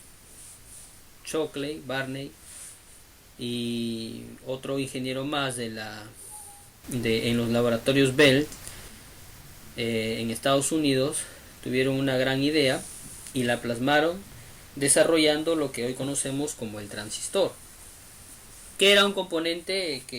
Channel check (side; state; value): both; identical; correlation 1.00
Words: Shockley, Barney y otro ingeniero más en los laboratorios Bell, en Estados Unidos. Tuvieron una gran idea y la plasmaron desarrollando lo que hoy conocemos como el transistor, que era un componente